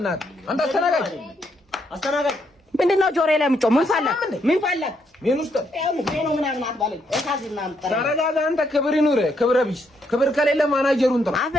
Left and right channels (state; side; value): normal; both; correlation 0.75